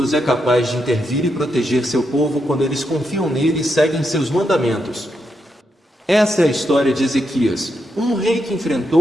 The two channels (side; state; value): both; normal; correlation 0.83